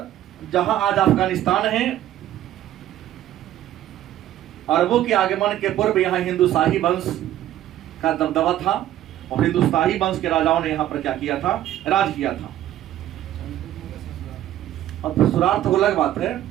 जहां आज अफगानिस्तान है, अरबों के आगमन के पूर्व यहाँ हिंदुशाही वंश का दबदबा था। और हिंदुशाही वंश के राजाओं ने यहाँ पर क्या किया था? राज किया था। अब ससुराल तो अलग बात है,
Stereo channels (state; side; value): quieter; left; 12.7 dB